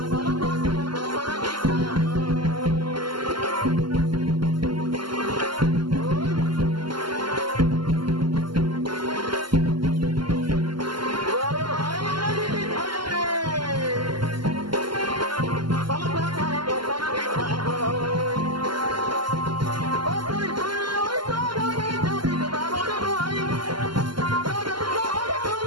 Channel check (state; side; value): late; left; 0.72 ms